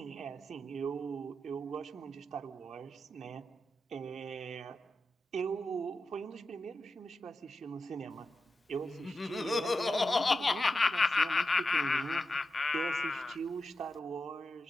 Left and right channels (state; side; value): normal; both; correlation 0.90